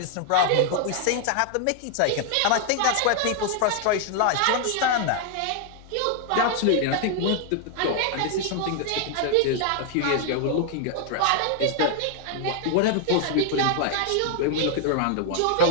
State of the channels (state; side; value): different; both; correlation 0.00